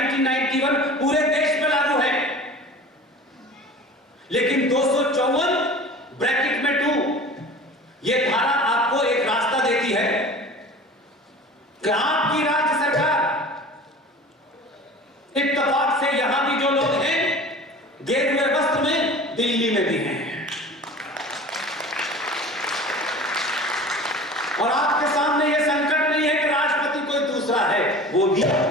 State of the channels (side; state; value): both; normal; correlation 0.39